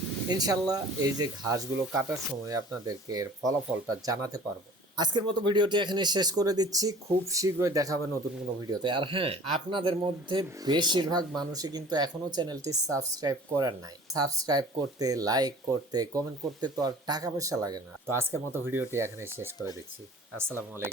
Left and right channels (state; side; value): normal; both; correlation 0.46